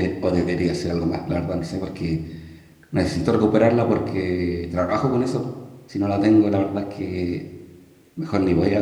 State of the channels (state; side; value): identical; both; correlation 1.00